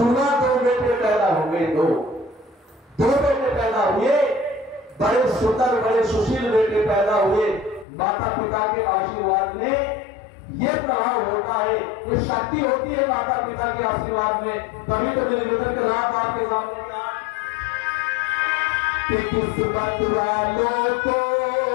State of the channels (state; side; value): drops out; right; at 7.9 s